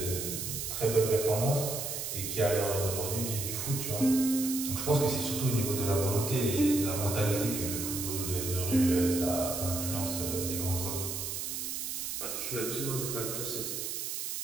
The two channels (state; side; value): noise; right; hiss, 4 dB below the sound